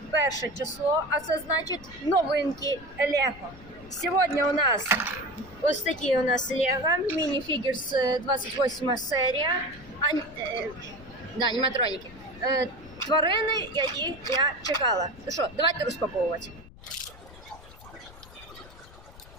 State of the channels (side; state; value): left; noise; rumble, 19 dB below the sound